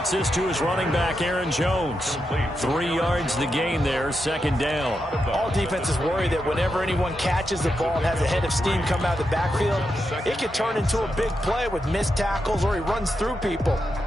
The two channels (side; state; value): both; normal; correlation 0.86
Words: this to his running back, Aaron Jones. 3 yards the gain there, second down. All defenses worry that whenever anyone catches the ball and has a head of steam come out of the backfield, it could turn into a big play with missed tackles or he runs through people.